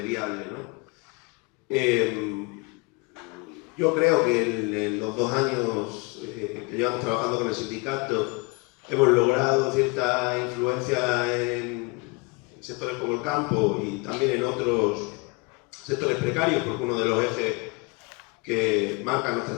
viable, ¿no? Yo creo que en los 2 años que llevamos trabajando con el sindicato hemos logrado cierta influencia en sectores como el campo y también en otros sectores precarios, porque uno de los ejes que marcan nuestra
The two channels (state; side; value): quieter; right; 27.9 dB